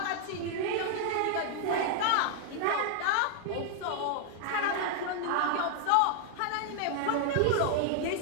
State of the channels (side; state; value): both; different; correlation 0.00